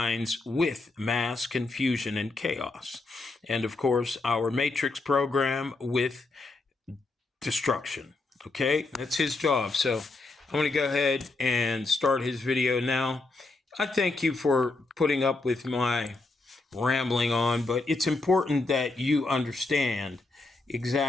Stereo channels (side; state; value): right; quieter; 3.3 dB